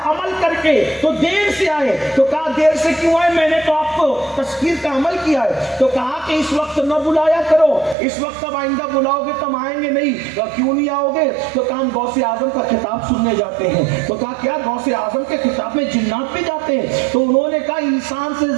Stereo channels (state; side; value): drops out; left; at 8.0 s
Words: عمل کر کے, تو دیر سے آئے, تو کہا دیر سے کیوں آئے, میں نے تو آپ کو تذکیر کا عمل کیا ہے. تو کہا کہ اس وقت نہ بلایا کرو, اس وقت اب آئندہ بلاؤ گے تم آئیں گے نہیں. کیوں نہیں آؤ گے؟ تو کہا ہم غوث اعظم کا خطاب سننے جاتے ہیں. تو کہا کیا غوث اعظم کے خطاب میں جنات بھی جاتے ہیں؟ تو انہوں نے کہا انسان سے